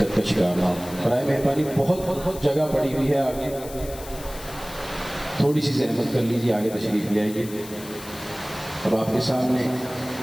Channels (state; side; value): noise; left; hiss, 15 dB below the sound